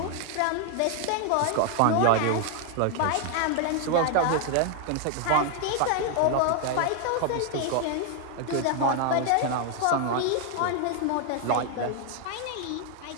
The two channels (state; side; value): different; both; correlation 0.00